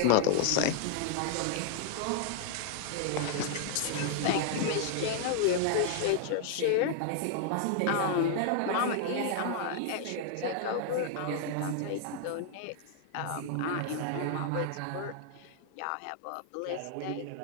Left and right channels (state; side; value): different; both; correlation 0.00